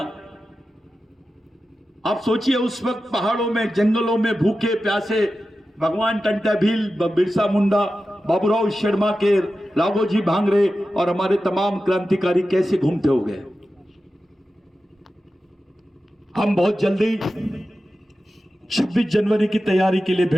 आप सोचिए उस वक्त पहाड़ों में, जंगलों में भूखे प्यासे भगवान टंटा भील, बिरसा मुंडा, बाबूराव शर्मा के, राघोजी भांगरे और हमारे तमाम क्रांतिकारी कैसे घूमते हो गए। हम बहुत जल्दी 26 जनवरी की तैयारी के लिए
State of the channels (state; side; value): normal; both; correlation 0.93